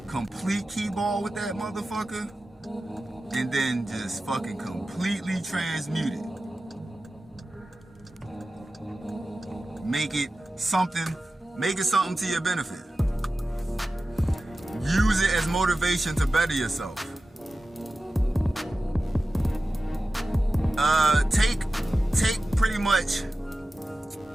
complete key ball with that motherfucker, and then just fucking completely transmute it. Make it something to your benefit. Use it as motivation to better yourself. Take pretty much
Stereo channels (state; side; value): normal; both; correlation 0.95